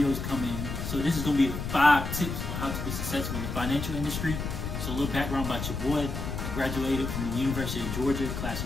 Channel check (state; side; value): noise; left; rumble, 4 dB below the sound